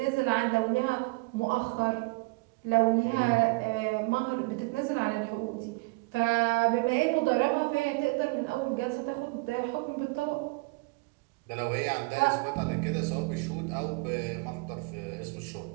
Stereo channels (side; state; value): left; quieter; 26.4 dB